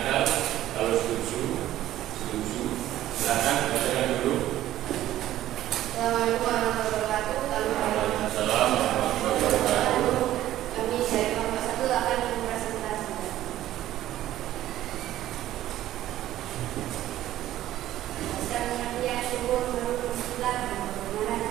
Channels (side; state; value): left; quieter; 13.7 dB